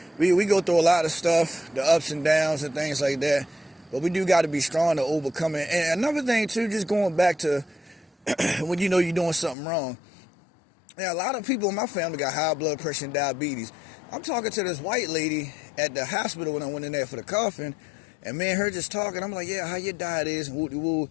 We go through a lot of stuff, the ups and downs and things like that. But we do got to be strong to overcome it. And another thing too, just going back to when you're doing something wrong. Yeah, a lot of people in my family got high blood pressure and diabetes. I'm talking to this white lady at the hospital when I went in there for the coffin. And me and her just talking, I'm like, yeah, how your diet is, and woo-de-woo.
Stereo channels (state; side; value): drops out; right; at 9.6 s